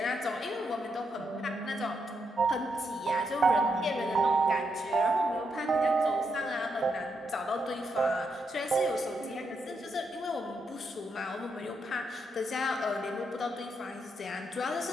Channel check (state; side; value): normal; both; correlation 0.80